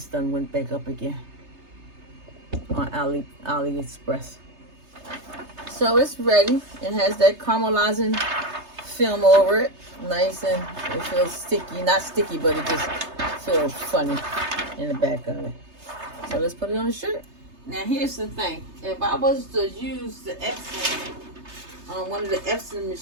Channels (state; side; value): late; left; 3.3 ms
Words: done went back up again on AliExpress. So it's ready. It has that caramelizing film over it. Nice, and it feels sticky. Not sticky, but it just feels funny in the back of it. So let's put it on the shirt. Now here's the thing. If I was to use the Epson on one of the Epson